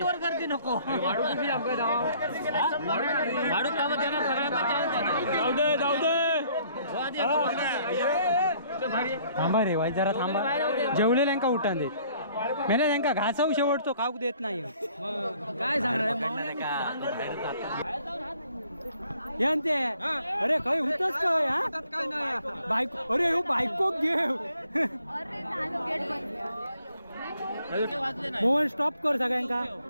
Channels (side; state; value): both; inverted; correlation -0.61